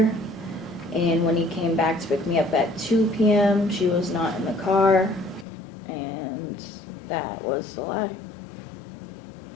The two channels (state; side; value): drops out; right; at 5.5 s